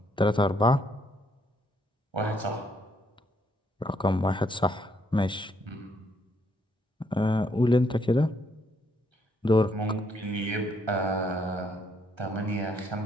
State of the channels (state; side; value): normal; both; correlation 0.71